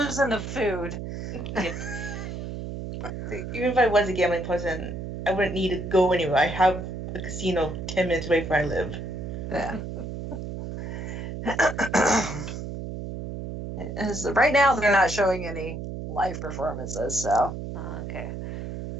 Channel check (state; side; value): noise; right; hum, 7 dB below the sound